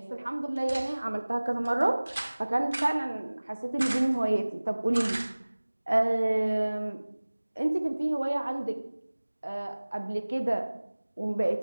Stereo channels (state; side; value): inverted; both; correlation -1.00